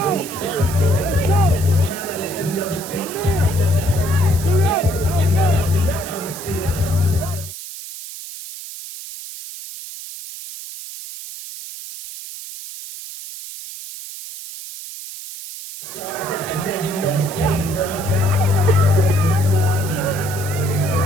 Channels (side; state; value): right; noise; hiss, 11 dB below the sound